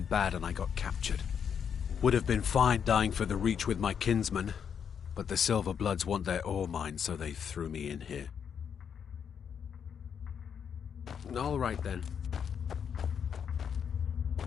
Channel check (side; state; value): right; quieter; 7.6 dB